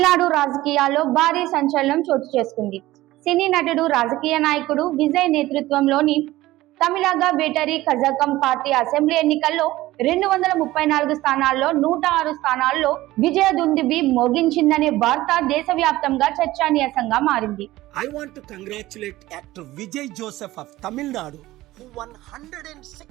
రాజకీయాల్లో భారీ సంచలనం చోటు చేసుకుంది. సినీ నటుడు, రాజకీయ నాయకుడు విజయ్ నేతృత్వంలోని Tamilaga battery Kazhagam party assembly ఎన్నికల్లో 234 స్థానాల్లో 106 స్థానాల్లో విజయ దుందుబి మోగించిందనే వార్త దేశవ్యాప్తంగా చర్చనీయాంశంగా మారింది. I want to congratulate actor Vijay Joseph of Tamil Nadu, who won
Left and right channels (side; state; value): left; quieter; 17.0 dB